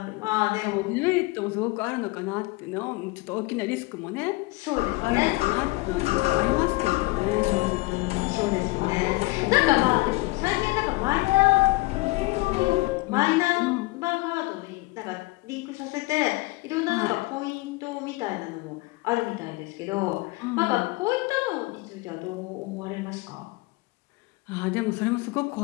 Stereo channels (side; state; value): right; quieter; 23.0 dB